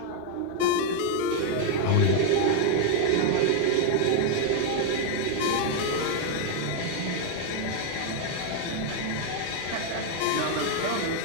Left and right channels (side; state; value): both; different; correlation 0.00